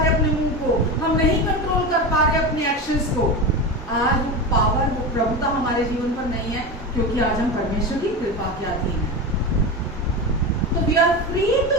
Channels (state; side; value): normal; both; correlation 0.22